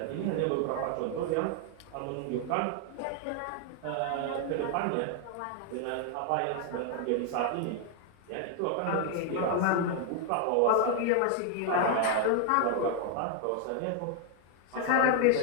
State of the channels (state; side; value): different; both; correlation 0.00